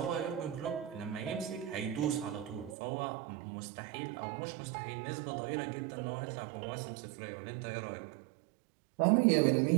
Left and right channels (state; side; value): drops out; left; at 2.8 s